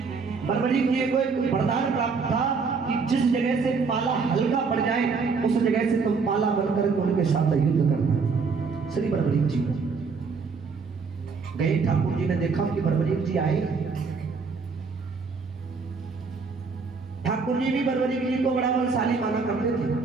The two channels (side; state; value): left; quieter; 4.9 dB